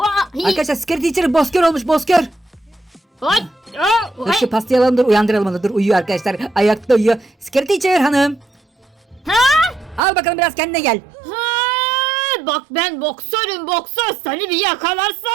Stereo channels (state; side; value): drops out; left; at 10.0 s